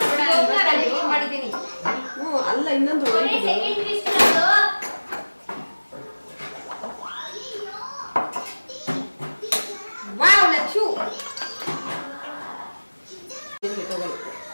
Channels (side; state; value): both; inverted; correlation -1.00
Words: ಮಾಡಿದ್ದೀನಿ. ಅಲ್ಲ ಇನ್ನೊಂದು ವಾವ್ ಲಚ್ಚು